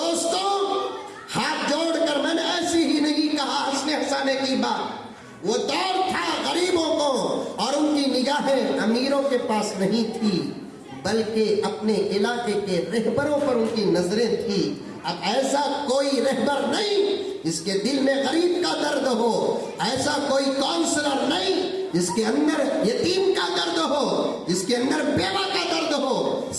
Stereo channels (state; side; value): identical; both; correlation 1.00